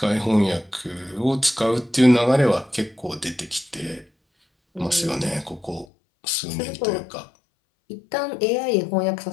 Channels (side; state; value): right; drops out; at 5.9 s